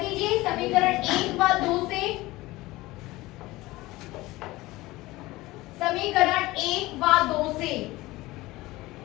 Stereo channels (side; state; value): right; quieter; 19.3 dB